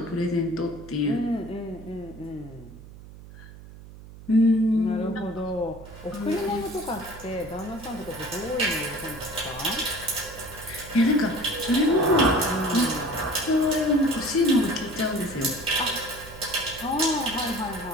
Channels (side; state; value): right; noise; hum, 17 dB below the sound